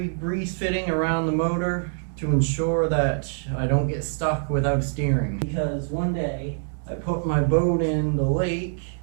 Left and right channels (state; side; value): silent; left; digital silence